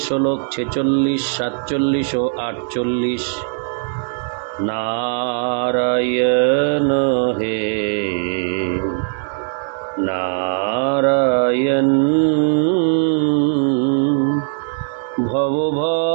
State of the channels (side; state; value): left; silent; digital silence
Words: শ্লোক 46, 47 ও 48। नारायण हे नारायण